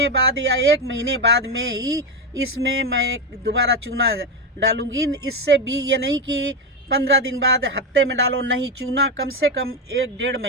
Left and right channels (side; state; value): both; normal; correlation 0.11